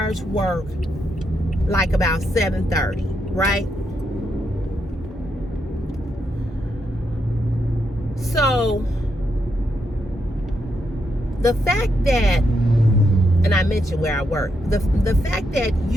like about 7:30, right? So the fact that, and I mentioned where I work, the fact that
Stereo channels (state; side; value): normal; both; correlation 0.81